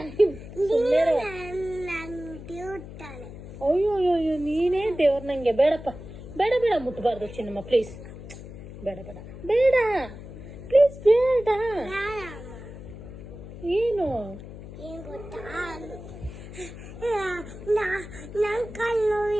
ಅಯ್ಯೋ ಅಯ್ಯೋ ನೀನೇ ದೇವ್ರ ನಂಗೆ ಬೇಡಪ್ಪ ಬೇಡ ಬೇಡ ಮುಟ್ಬಾರ್ದು ಚಿನ್ನಮ್ಮ ಪ್ಲೀಸ್ ಬೇಡ ಬೇಡ ಬೇಡ ಪ್ಲೀಸ್ ಬೇಡ ಏನು ನನ್ನ ಕಾಲು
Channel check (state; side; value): noise; left; hum, 13 dB below the sound